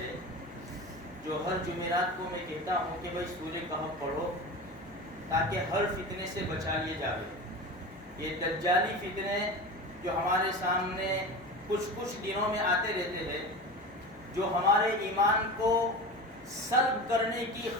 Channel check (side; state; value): both; normal; correlation 0.30